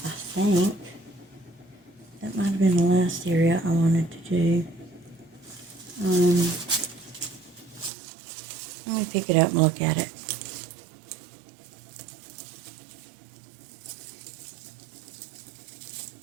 think. That might have been the last area I wanted to do. Let me pick it up and look at it.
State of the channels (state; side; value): drops out; left; at 7.9 s